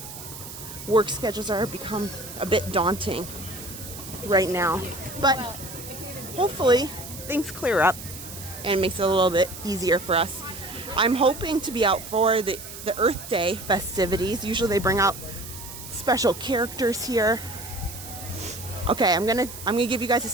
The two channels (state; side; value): noise; right; hiss, 12 dB below the sound